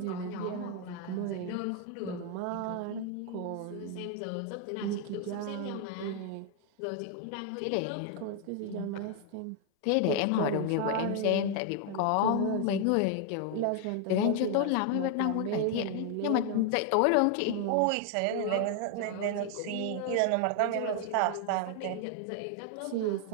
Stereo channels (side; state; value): both; different; correlation 0.00